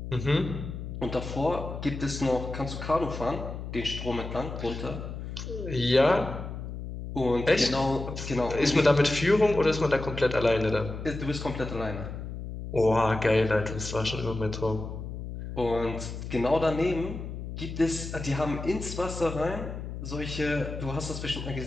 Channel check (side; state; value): left; noise; hum, 8 dB below the sound